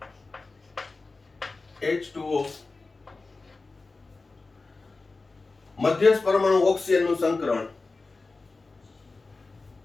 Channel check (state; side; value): quieter; right; 3.7 dB